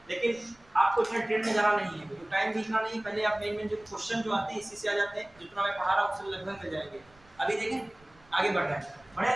लेकिन आपको इतना डिटेल में जाना नहीं है, क्योंकि टाइम भी इतना नहीं है। पहले आप मेन जो क्वेश्चन जो आते हैं इसी से आ जाते हैं, जितना मैं पढ़ा रहा हूँ उससे लगभग मिल जाएंगे। अभी देखें आगे बढ़ रहे हैं, बढ़े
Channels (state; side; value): noise; right; rumble, 29 dB below the sound